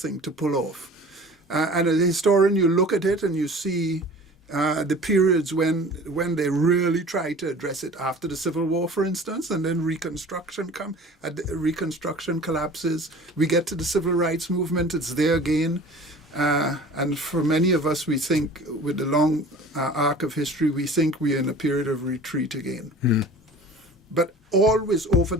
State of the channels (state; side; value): normal; both; correlation 0.43